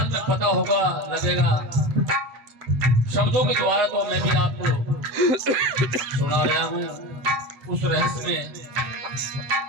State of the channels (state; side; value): late; left; 7.5 ms